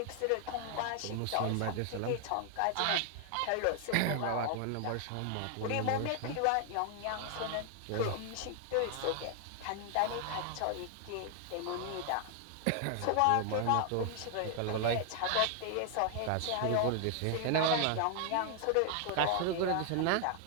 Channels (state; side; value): different; both; correlation 0.00